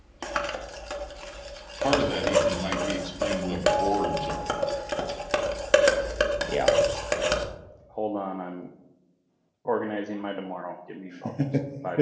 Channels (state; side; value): identical; both; correlation 1.00